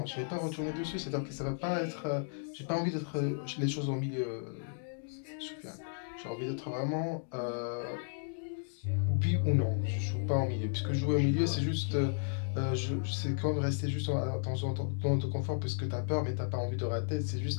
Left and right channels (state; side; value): silent; right; digital silence